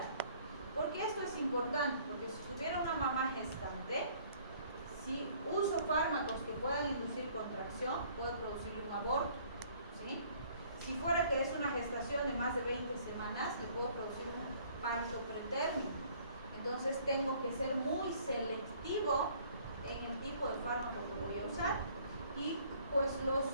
¿Por qué esto es importante? Porque si tuviera una mamá gestante, si uso fármacos que puedan inducir contracción, puedo producir un aborto, ¿sí? Si fuera que es una gestación de más de 20 semanas, le puedo producir un parto pretérmino. Entonces tengo que ser muy selectivo en el tipo de fármaco que voy a usar. Y pues los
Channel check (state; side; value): inverted; both; correlation -0.58